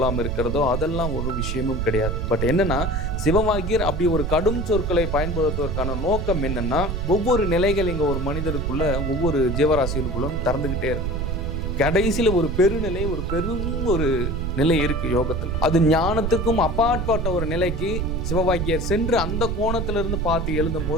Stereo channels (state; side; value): noise; right; rumble, 2 dB below the sound